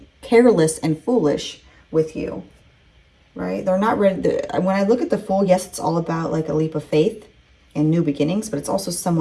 foolish with you, right? They're not ready. When I look at the Fool, yes, it's all about like a leap of faith and new beginnings, but it's also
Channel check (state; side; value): identical; both; correlation 1.00